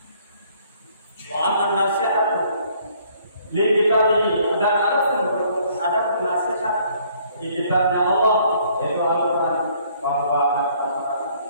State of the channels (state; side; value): inverted; both; correlation -0.62